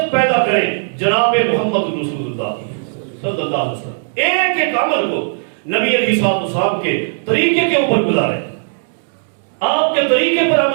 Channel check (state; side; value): silent; left; digital silence